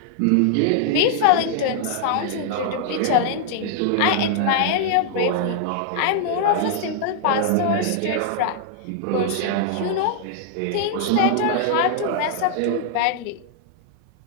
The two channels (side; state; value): both; different; correlation -0.01